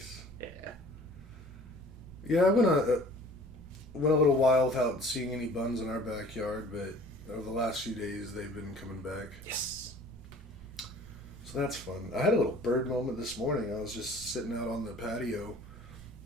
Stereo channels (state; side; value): normal; both; correlation 0.49